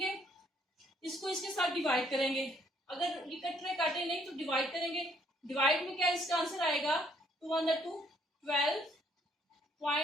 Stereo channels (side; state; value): both; normal; correlation 0.66